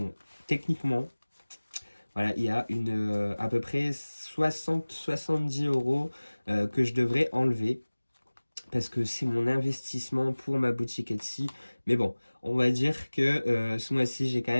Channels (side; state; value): both; inverted; correlation -1.00